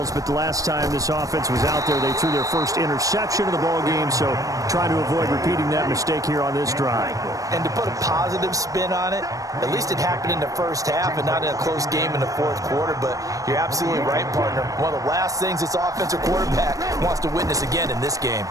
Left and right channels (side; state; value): left; late; 0.16 ms